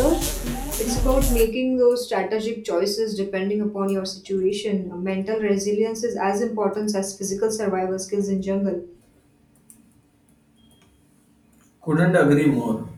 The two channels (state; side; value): identical; both; correlation 1.00